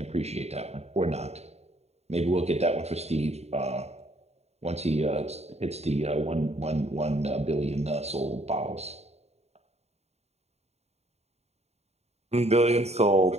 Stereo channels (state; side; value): late; left; 0.31 ms